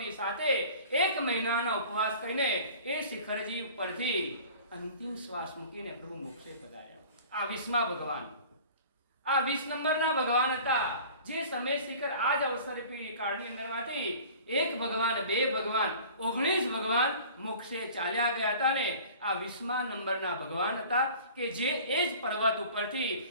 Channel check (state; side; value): inverted; both; correlation -0.44